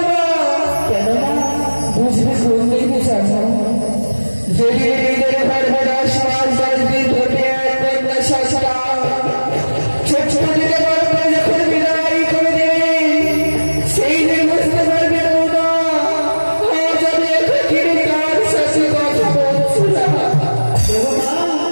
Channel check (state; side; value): inverted; both; correlation -1.00